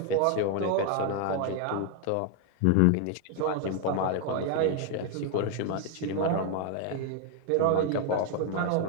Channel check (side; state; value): both; different; correlation 0.00